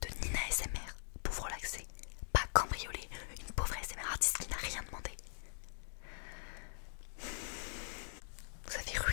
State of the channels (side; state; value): right; silent; digital silence